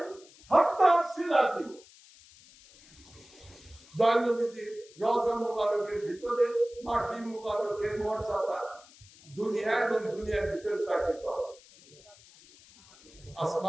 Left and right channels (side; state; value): left; noise; hiss, 24 dB below the sound